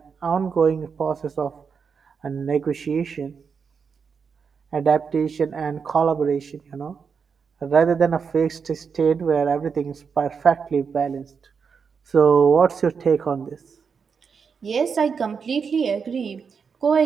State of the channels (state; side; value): quieter; left; 6.0 dB